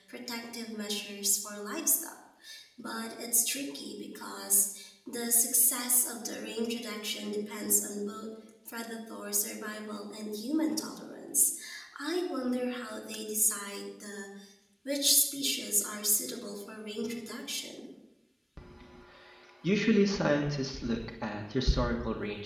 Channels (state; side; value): identical; both; correlation 1.00